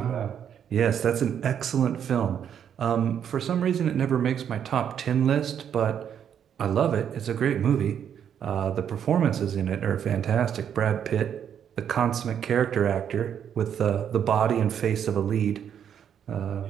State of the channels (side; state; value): left; quieter; 8.7 dB